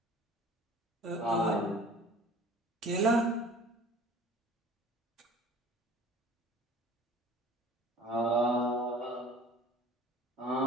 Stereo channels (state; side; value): normal; both; correlation 0.48